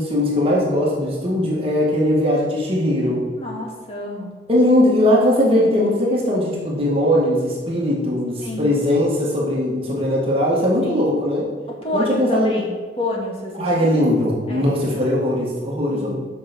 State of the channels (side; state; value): both; normal; correlation 0.53